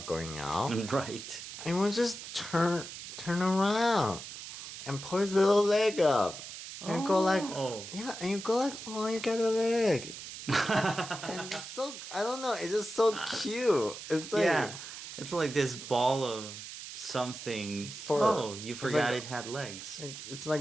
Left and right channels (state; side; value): noise; right; hiss, 11 dB below the sound